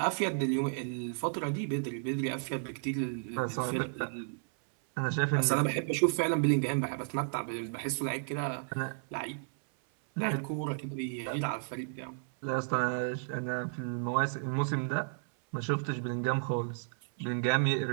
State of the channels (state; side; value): silent; left; 56 dB below the other